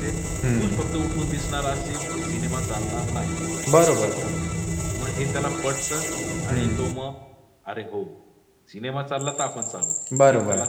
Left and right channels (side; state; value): both; identical; correlation 1.00